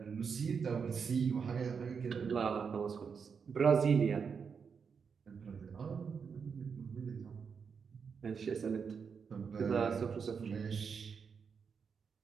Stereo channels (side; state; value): left; quieter; 6.1 dB